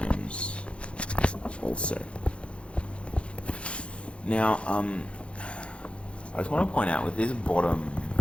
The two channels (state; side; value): late; right; 0.059 ms